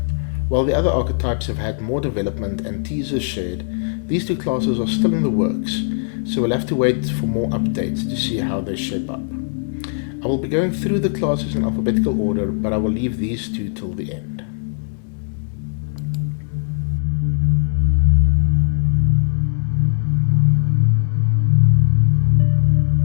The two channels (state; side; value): silent; right; digital silence